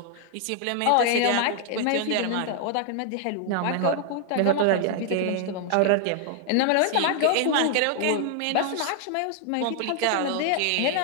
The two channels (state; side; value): different; both; correlation 0.00